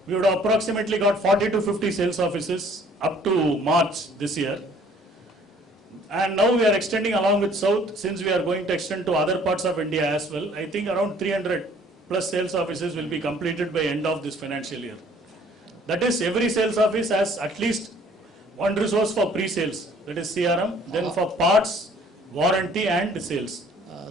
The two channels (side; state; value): both; normal; correlation 0.57